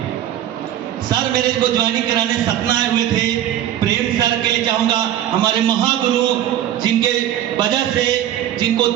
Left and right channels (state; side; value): quieter; left; 11.6 dB